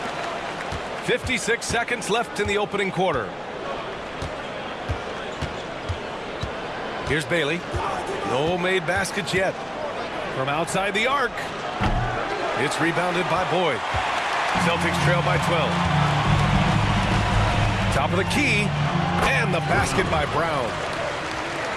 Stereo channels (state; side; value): identical; both; correlation 1.00